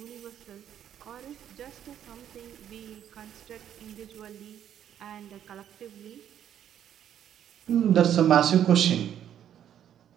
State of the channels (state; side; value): quieter; left; 10.1 dB